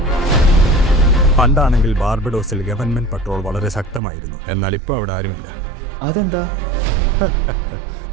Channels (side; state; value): left; drops out; at 4.0 s